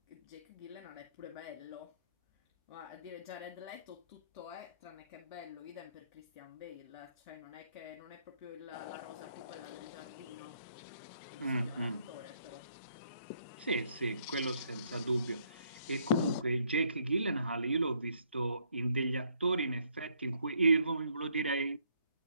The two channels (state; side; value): inverted; both; correlation -0.70